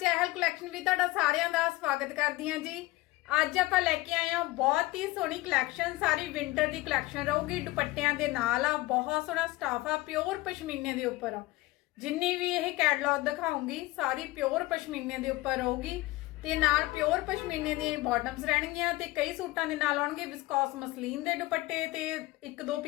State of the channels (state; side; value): quieter; right; 19.5 dB